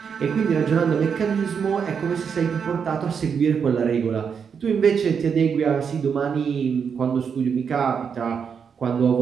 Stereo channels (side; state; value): left; quieter; 6.7 dB